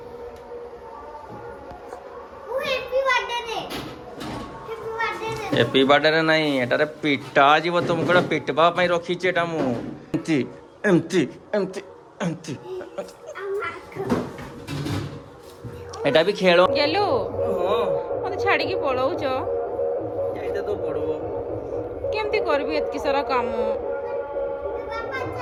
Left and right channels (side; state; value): both; identical; correlation 1.00